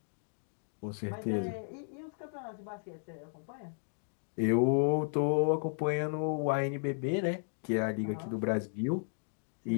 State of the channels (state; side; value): silent; right; 55 dB below the other